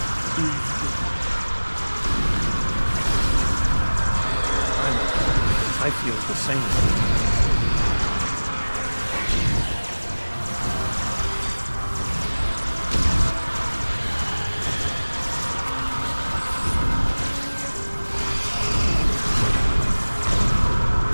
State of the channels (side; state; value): both; inverted; correlation -1.00